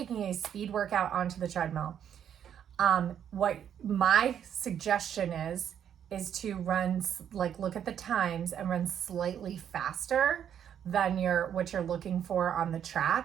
a speed workout onto the treadmill, what my suggestion is to run, look at the times and run slightly faster than what you're looking for on the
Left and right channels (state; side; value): quieter; left; 9.1 dB